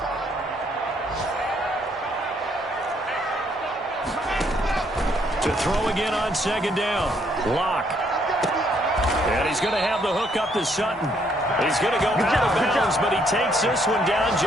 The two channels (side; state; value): both; normal; correlation 0.69